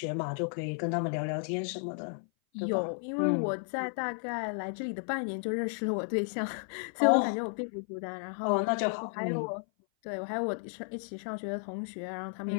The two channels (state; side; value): silent; right; 56 dB below the other